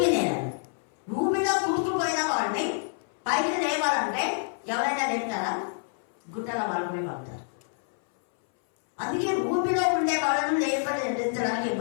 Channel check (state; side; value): silent; right; 60 dB below the other